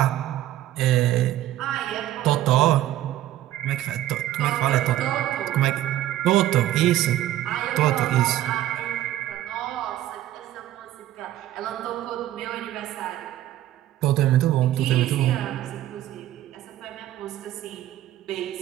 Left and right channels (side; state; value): left; quieter; 13.5 dB